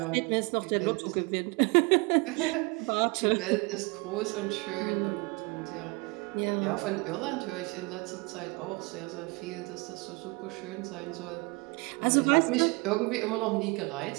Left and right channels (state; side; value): quieter; left; 27.5 dB